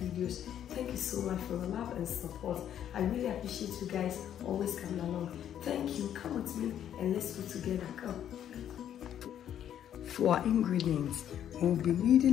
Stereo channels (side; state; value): right; quieter; 10.2 dB